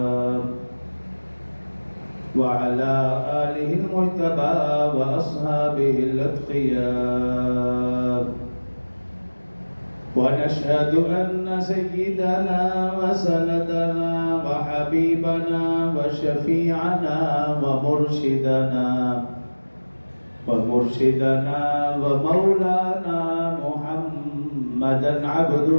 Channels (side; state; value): both; inverted; correlation -1.00